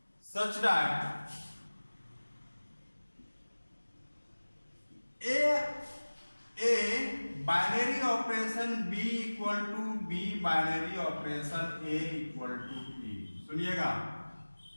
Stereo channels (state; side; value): inverted; both; correlation -1.00